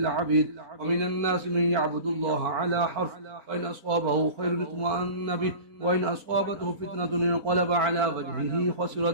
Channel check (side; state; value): left; late; 4.0 ms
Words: ومن الناس من يعبد الله على حرف فإن أصابه خير اطمأن به وإن أصابته فتنة انقلب على وجهه خسر